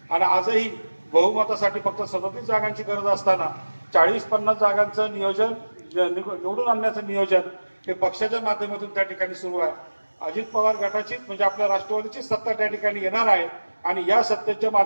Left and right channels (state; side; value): inverted; both; correlation -1.00